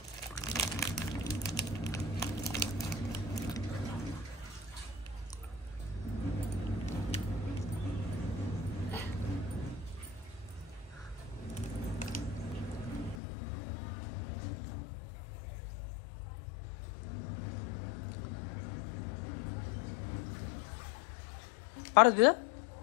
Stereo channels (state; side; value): drops out; right; at 13.2 s